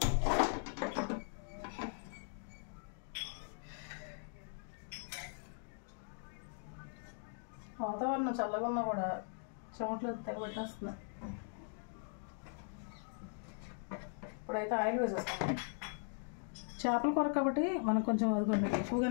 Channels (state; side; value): silent; right; 51 dB below the other